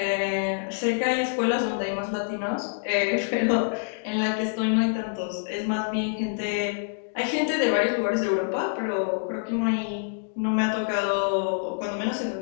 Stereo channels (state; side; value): silent; right; digital silence